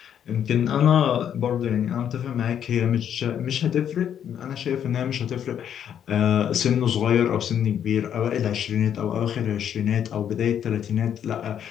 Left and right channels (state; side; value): quieter; right; 9.2 dB